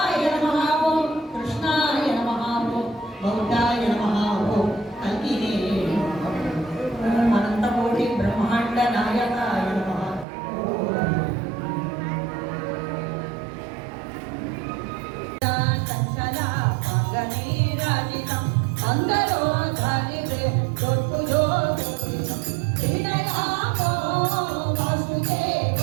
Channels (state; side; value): drops out; left; at 10.2 s